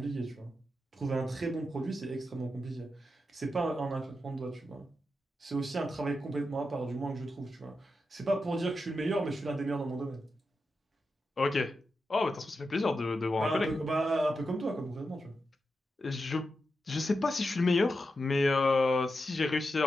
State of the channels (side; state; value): both; normal; correlation 0.88